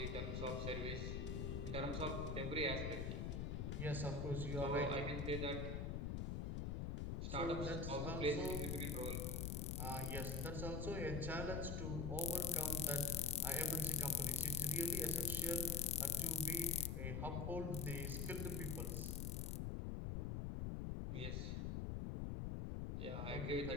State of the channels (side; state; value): left; noise; rumble, 1 dB below the sound